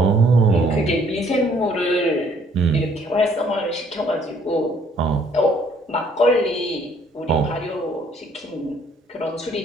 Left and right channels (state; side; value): normal; both; correlation 0.62